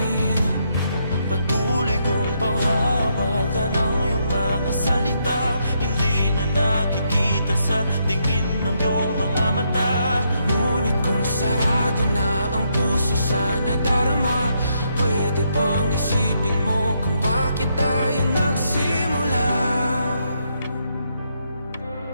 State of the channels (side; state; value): both; inverted; correlation -0.77